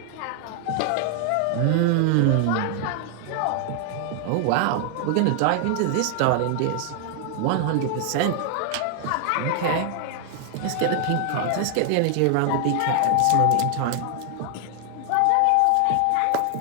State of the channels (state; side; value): different; both; correlation 0.00